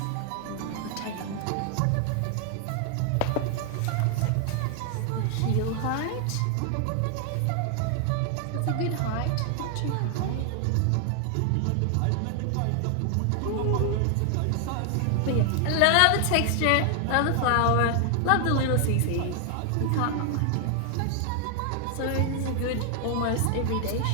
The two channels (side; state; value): both; different; correlation 0.00